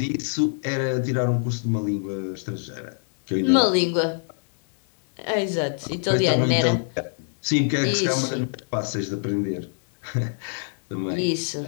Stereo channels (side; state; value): right; silent; 62 dB below the other